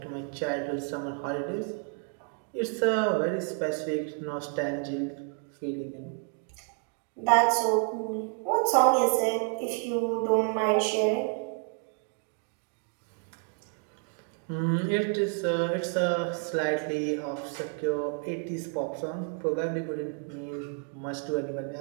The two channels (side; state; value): left; quieter; 36.6 dB